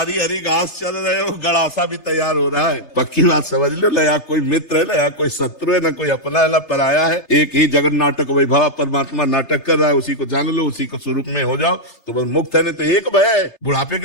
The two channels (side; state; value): right; late; 3.3 ms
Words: हरी घास चल रहे हो, गड़ासा भी तैयार हो रहा है। पक्की बात समझ लो, न यहाँ कोई मित्र है, न यहाँ कोई शत्रु है, न कोई अपना है, न पराया है। एक ही जगन नाटक वैभव परमात्मा नाटक कर रहा है, उसी को जान लो, उसी को स्वरूप में हो जाओ तो बस मुक्त है। नहीं तो एक भय, बुढ़ापे